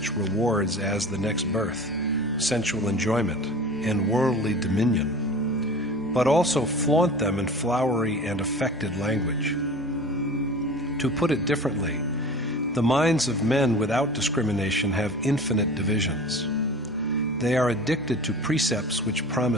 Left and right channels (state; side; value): normal; both; correlation 0.37